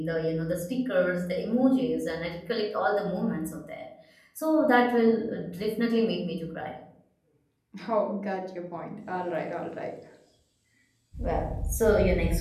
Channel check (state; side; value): identical; both; correlation 1.00